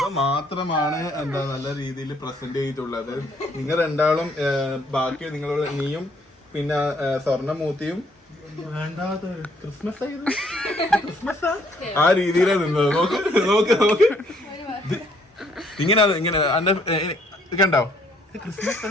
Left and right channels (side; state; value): both; normal; correlation 0.66